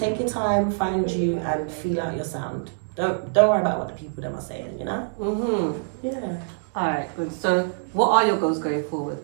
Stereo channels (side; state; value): left; silent; digital silence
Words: your time, find you, and feel out your sound. Don't worry about what the people them are saying, you know? Yeah. Alright, good. So what are your goals going forward?